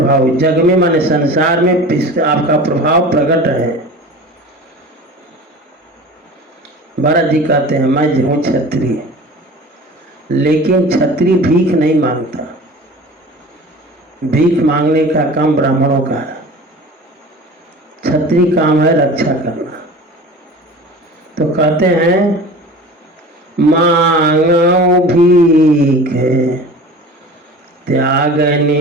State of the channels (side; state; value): both; normal; correlation 0.38